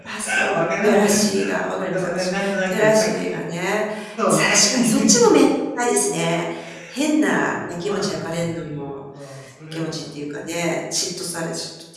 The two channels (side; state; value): both; identical; correlation 1.00